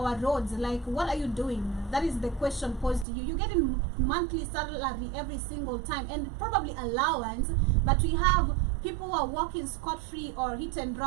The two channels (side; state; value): left; drops out; at 3.1 s